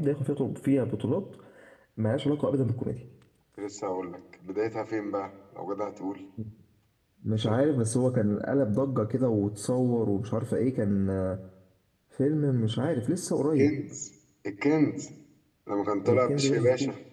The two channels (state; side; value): identical; both; correlation 1.00